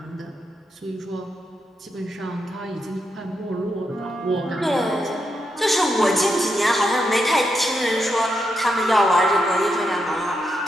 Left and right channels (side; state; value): both; normal; correlation 0.83